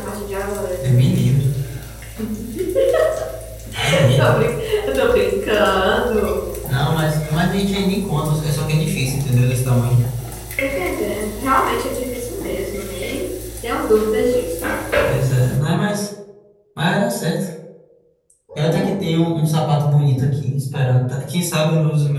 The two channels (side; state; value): both; identical; correlation 1.00